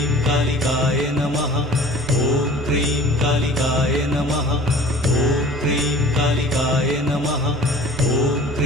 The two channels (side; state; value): both; normal; correlation 0.45